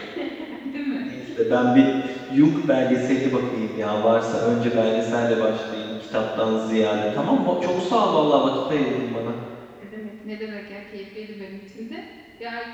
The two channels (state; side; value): identical; both; correlation 1.00